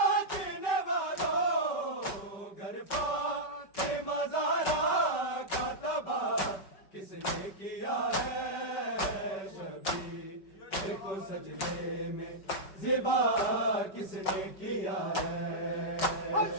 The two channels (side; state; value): right; late; 5.2 ms